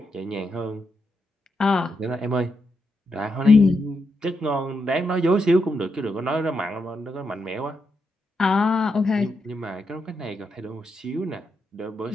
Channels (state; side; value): normal; both; correlation 0.83